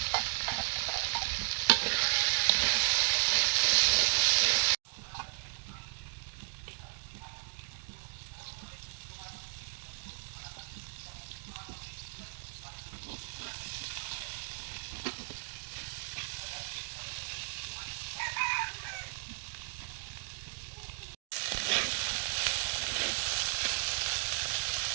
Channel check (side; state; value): left; silent; digital silence